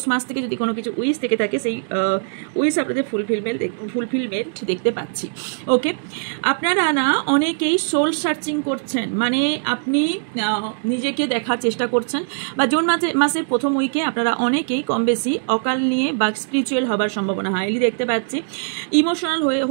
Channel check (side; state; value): left; silent; digital silence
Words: মাস থেকে যদি কোনো কিছু উইশ থেকে থাকে সেই উইশ আপনাদের ফুলফিলমেন্ট দেখতে পাচ্ছি। ওকে, আপনারা না অনেকেই সোল সার্চিং করছেন, মানে আপনি নিজেকে দেখার চেষ্টা করছেন। বা জুন মাসের প্রথম উইকে আপনারা অনেকেই কম বেশি অকাল নিয়ে বা স্পিরিচুয়াল হবার সম্ভাবনা হাইলি দেখতে পাচ্ছি। ইমোশনাল